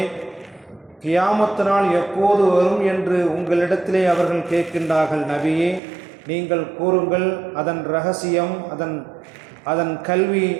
கியாமத் நாள் எப்போது வரும் என்று உங்களிடத்திலே அவர்கள் கேட்கின்றார்கள். நபியே, நீங்கள் கூறுங்கள், அதன் ரகசியம், அதன் கல்வி,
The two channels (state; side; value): drops out; left; at 5.8 s